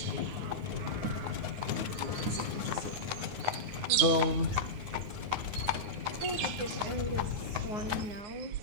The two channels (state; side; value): late; left; 9.6 ms